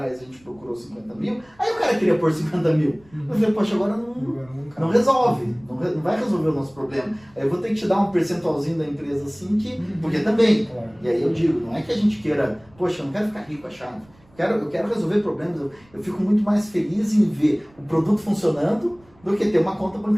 a gente procurou 50 mil, aí o cara queria pôr 50 mil. Eu falei, poxa, agora não resolve, não vai resolver o nosso problema. Aí eu vou ter que te dar um percentualzinho da empresa assim, porque também. Claro. E aí eu digo, não é que a gente queira, poxa, eu não quero ficar rico achado. Eu quero resolver problemas, eu fico muito mais feliz em ver o produto funcionando do que ter uma conta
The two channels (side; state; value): right; noise; rumble, 29 dB below the sound